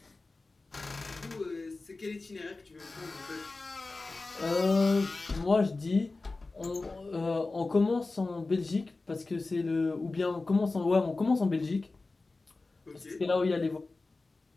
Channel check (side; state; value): right; quieter; 3.5 dB